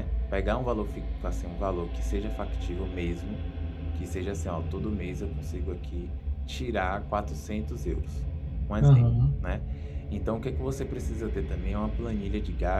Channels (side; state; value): both; identical; correlation 1.00